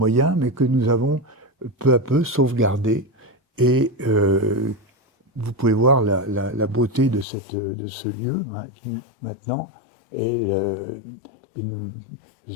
mais que nous avons peu à peu sauvegardé. Et vous pouvez voir la beauté de ce lieu maintenant. Je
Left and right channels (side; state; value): right; drops out; at 7.2 s